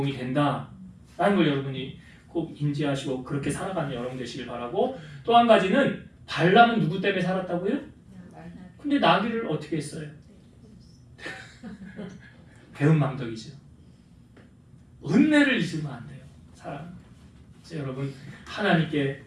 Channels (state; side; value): identical; both; correlation 1.00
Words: 된다라는 걸 여러분이 꼭 인지하시고 그렇게 살아가는 여러분 되시길 바라고, 또 한 가지는 발람은 누구 때문에 살았다고요? 근데 나귀를 어떻게 했어요? 배은망덕이죠. 은혜를 잊으면 안 돼요. 사람. 여러분, 하나님께